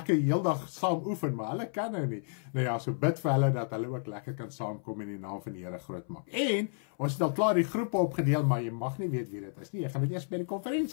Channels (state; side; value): silent; right; 57 dB below the other